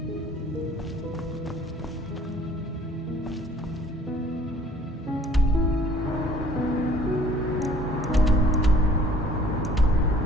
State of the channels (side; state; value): both; normal; correlation 0.54